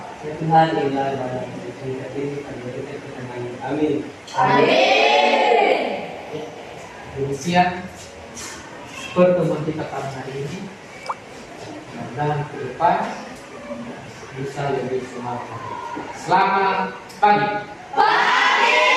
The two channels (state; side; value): identical; both; correlation 1.00